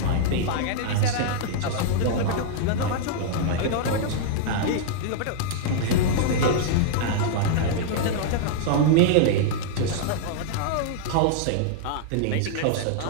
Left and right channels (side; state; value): both; different; correlation -0.01